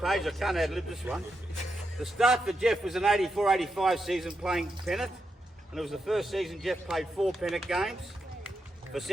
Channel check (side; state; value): both; normal; correlation 0.85